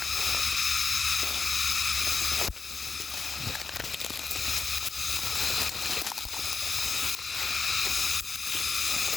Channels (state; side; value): quieter; right; 4.7 dB